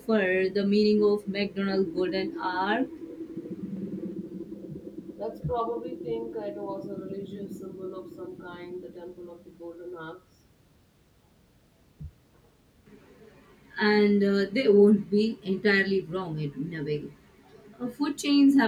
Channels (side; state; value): both; identical; correlation 1.00